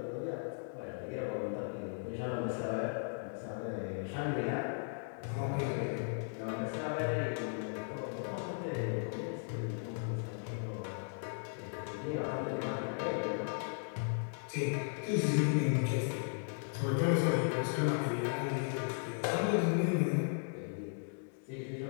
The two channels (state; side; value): silent; right; digital silence